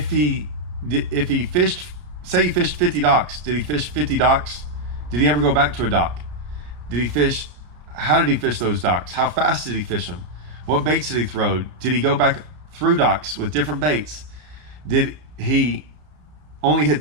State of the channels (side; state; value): left; late; 33 ms